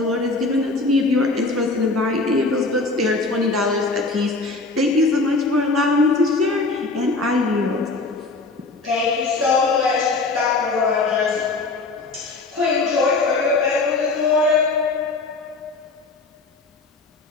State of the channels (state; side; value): quieter; right; 3.5 dB